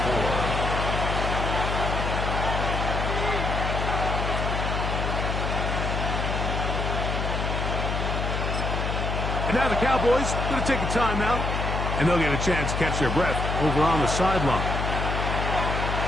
And now the Cowboys going to take a timeout, and they'll get a chance to catch their breath over on the sideline.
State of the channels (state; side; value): noise; left; hum, 1 dB below the sound